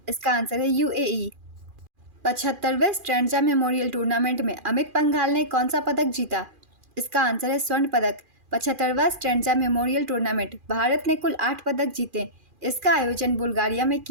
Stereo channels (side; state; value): left; late; 2.4 ms